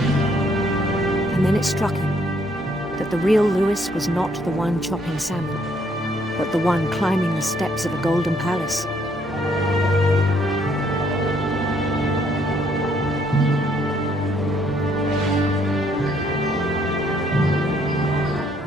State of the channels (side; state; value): both; normal; correlation 0.68